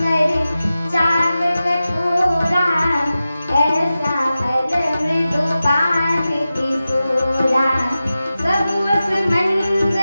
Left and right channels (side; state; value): both; inverted; correlation -0.94